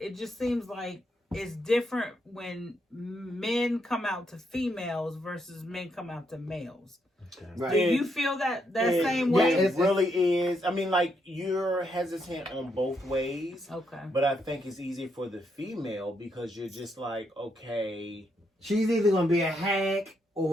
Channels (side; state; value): both; normal; correlation 0.78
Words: just seems like it's different when men come out to females versus men come out to males. Okay. Right. Do you feel that same way? It really is. I mean, like, you're hesitant on both ways. Okay. But I think it's easier for the female because you're just like, okay. She's either going to be a hack